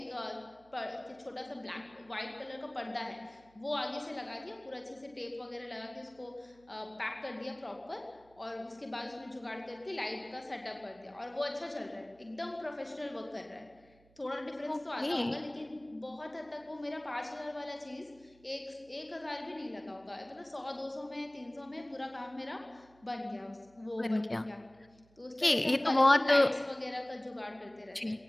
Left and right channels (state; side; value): noise; right; hum, 29 dB below the sound